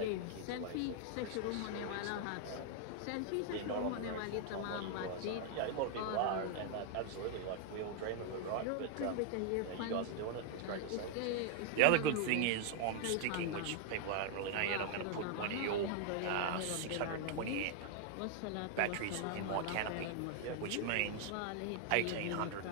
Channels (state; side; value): different; both; correlation 0.00